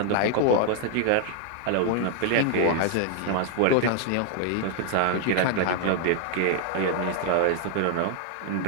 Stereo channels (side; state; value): both; different; correlation 0.00